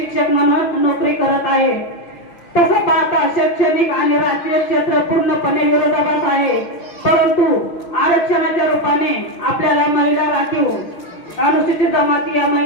म्हणून नोकरी करत आहे. तसं पाहता शैक्षणिक आणि राजकीय क्षेत्र पूर्णपणे विरोधाभास आहे, परंतु आरक्षणाच्या रूपाने आपल्याला महिला राखीव अनुसूचित जमाती या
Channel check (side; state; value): right; late; 5.8 ms